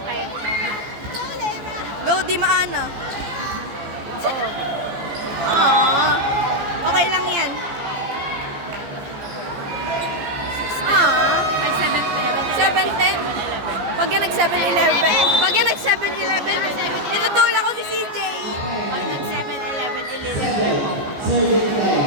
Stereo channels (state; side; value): late; left; 14 ms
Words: Go, Di Maana. Aww. Okay lang yan. Aww. 7:10. Pag yan nag 7-11. Pag yan nag 7-11, itutulak ko si CJ.